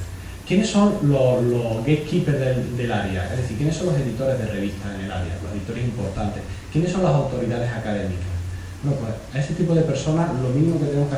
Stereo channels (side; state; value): both; identical; correlation 1.00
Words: ¿Quiénes son los gatekeepers del área? Es decir, ¿quiénes son los editores de revistas en el área? Los editores importantes. ¿Quiénes son las autoridades académicas? Bueno, pues a ese tipo de personas lo mínimo que tenemos que